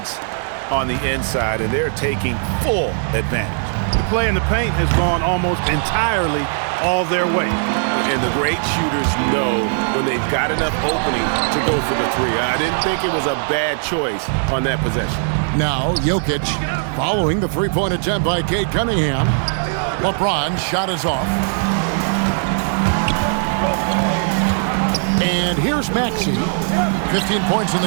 on the inside, and they're taking full advantage. The play in the paint has gone almost entirely all their way. And the great shooters know when they've got enough opening to go for the 3. I didn't think it was a bad choice on that possession. Now, Jokic following the three-point attempt by Cade Cunningham. LeBron's shot is off. And here's Maxey. 15 points in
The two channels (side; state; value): left; silent; digital silence